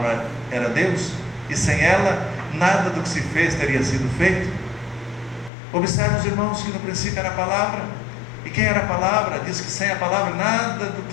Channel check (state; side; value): drops out; right; at 5.5 s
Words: era Deus, e sem ela nada do que se fez teria sido feito. Observe, os irmãos, que no princípio era a palavra, e quem era a palavra? Diz que sem a palavra nada do